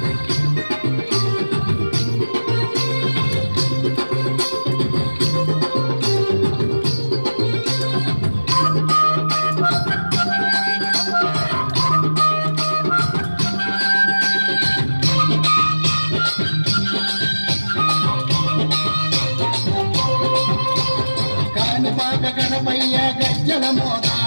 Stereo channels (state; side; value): inverted; both; correlation -1.00